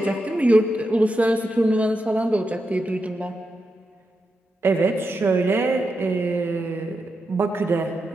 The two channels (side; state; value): both; normal; correlation 0.87